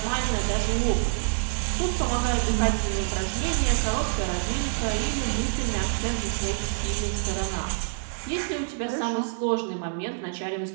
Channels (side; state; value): left; silent; digital silence